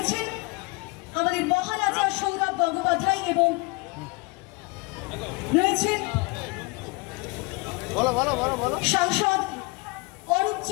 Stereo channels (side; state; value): right; quieter; 27.3 dB